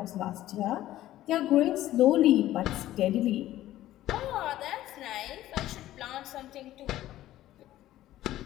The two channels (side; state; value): right; quieter; 14.3 dB